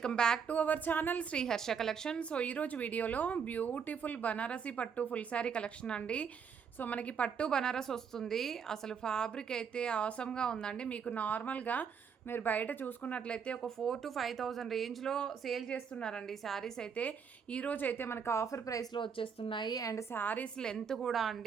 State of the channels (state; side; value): quieter; left; 6.7 dB